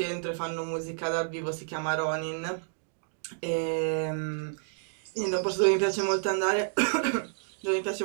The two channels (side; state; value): left; silent; digital silence